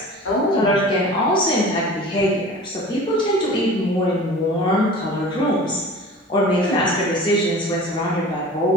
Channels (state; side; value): normal; both; correlation 0.40